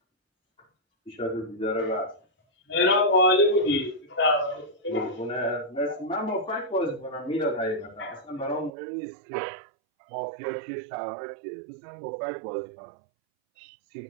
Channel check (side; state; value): left; drops out; at 8.7 s